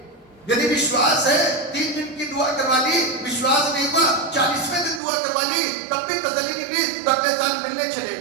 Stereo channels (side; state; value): left; drops out; at 5.0 s